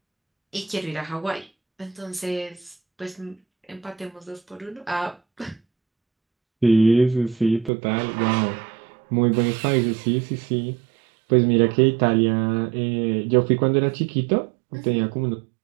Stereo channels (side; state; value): left; drops out; at 7.7 s